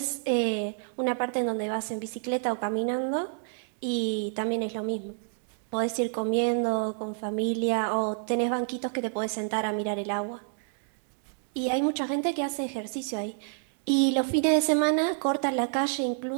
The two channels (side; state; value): left; silent; digital silence